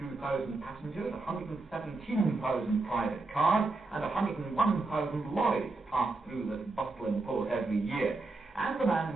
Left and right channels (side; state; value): left; quieter; 3.4 dB